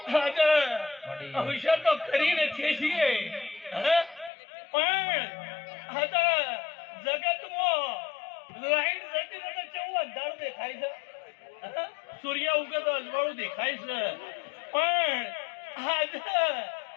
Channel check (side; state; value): right; drops out; at 4.3 s